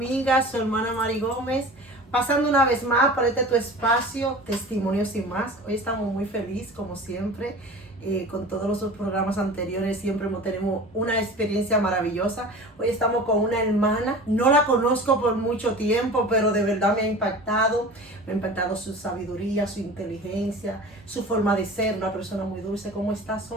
su hermana Mari Gómez, pasando una vez más por tu espacio, Testimonios y Más. Hoy estamos muy felices, como siempre, con todos los programas anteriores, siempre tenemos una experiencia maravillosa. Hoy estamos con una hermana, no la conozco por mucho tiempo, pero de verdad me ha impactado su sabiduría, su inteligencia, su forma de ser, una persona muy dulce. ¿Cómo estás,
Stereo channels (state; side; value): normal; both; correlation 0.37